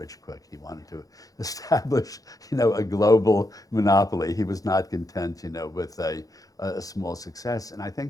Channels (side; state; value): right; late; 0.17 ms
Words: quick. He wanted to establish, a global monopoly. He was not content, with a small success. And I